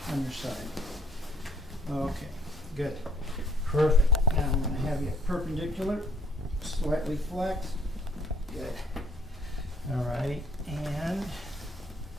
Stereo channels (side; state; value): both; normal; correlation 0.61